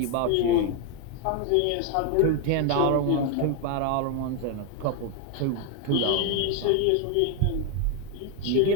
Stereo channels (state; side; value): different; both; correlation 0.01